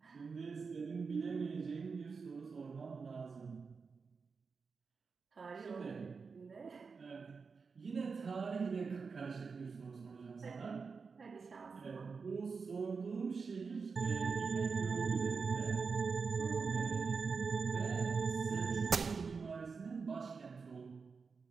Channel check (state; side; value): quieter; left; 5.0 dB